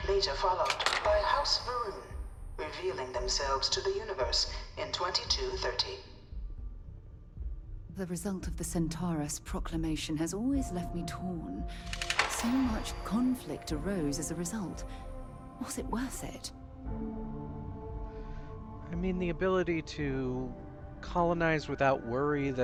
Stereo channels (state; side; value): identical; both; correlation 1.00